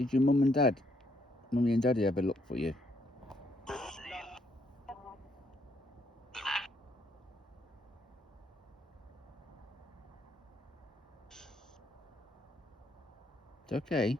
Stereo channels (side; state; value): both; normal; correlation 0.72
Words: your mummy and daddy ever look for you? It's okay,